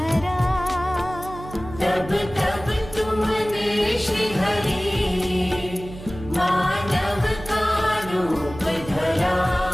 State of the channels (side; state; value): right; noise; hum, 14 dB below the sound